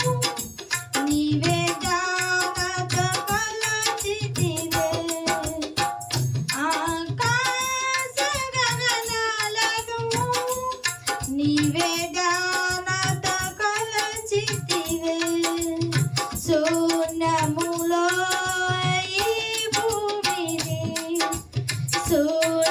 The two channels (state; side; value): identical; both; correlation 1.00